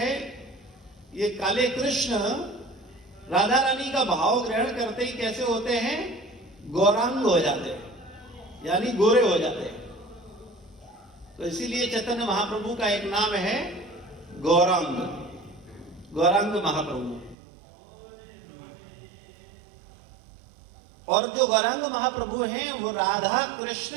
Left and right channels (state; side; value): drops out; left; at 17.4 s